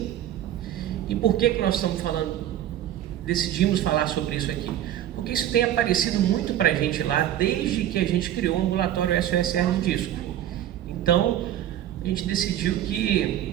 E por que nós estamos decidimos falar sobre isso aqui? Porque isso tem aparecido muito para a gente lá, desde que a gente criou o ambulatório SOS hérnia de disco. Então, a gente decidiu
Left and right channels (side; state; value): left; quieter; 11.8 dB